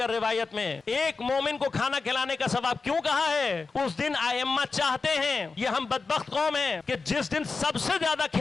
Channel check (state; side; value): quieter; right; 4.3 dB